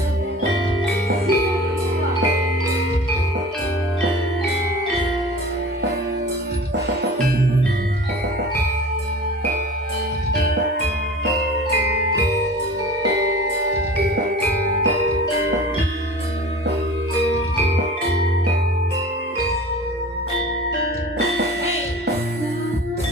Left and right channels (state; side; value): normal; both; correlation 0.40